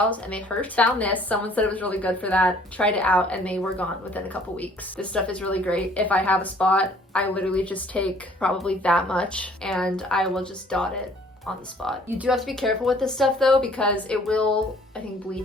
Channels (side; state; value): both; normal; correlation 0.57